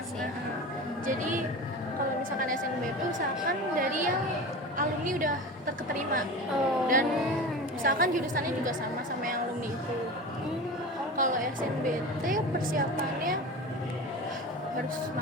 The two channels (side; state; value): both; normal; correlation 0.31